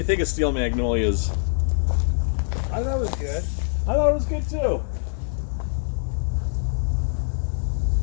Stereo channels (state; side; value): silent; right; digital silence